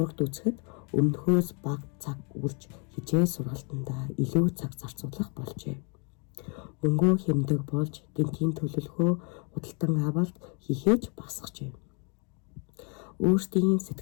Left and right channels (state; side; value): quieter; right; 35.7 dB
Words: үзэхэд өмнөхөөс бага цаг үрж хичээл сургалтандаа илүү цаг зарцуулах болжээ. Мөнгөө хэмдэг болж гэнтийн төлөвлөгөө худалдан авалт хийхээж багасгажээ. Өөрсдийн